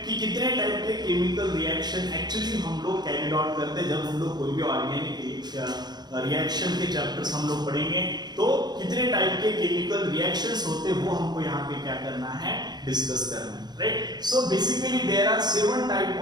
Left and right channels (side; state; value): left; late; 0.20 ms